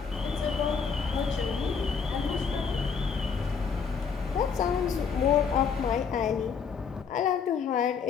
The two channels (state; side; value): quieter; right; 6.1 dB